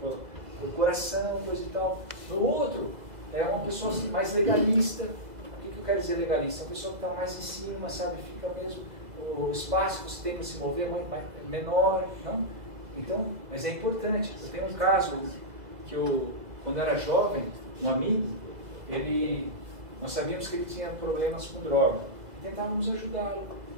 coração, coisa e tal. No outro, é uma pessoa assim, mais legalista. O que eu quero dizer legalista? Uma pessoa que está mais em cima, sabe? Fica mesmo, o espaço que você tem para se mover é menor, não? Então, mas é importante. Eu tenho um caso que quando eu era jovem, um amigo, nós sabíamos que ele tinha problemas com droga. Tentávamos ajudá-lo.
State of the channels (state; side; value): late; left; 2.0 ms